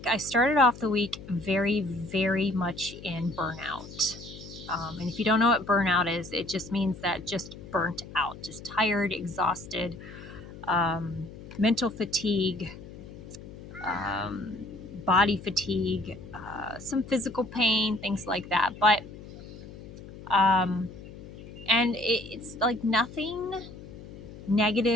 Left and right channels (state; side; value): noise; left; hum, 15 dB below the sound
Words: I started off the week very, very much in burnout. And if you don't know what burnout is, it just means that just burnt out, just tired, exhausted, mental fatigue, body fatigue, some physical pain, things like that. But, and it's like nothing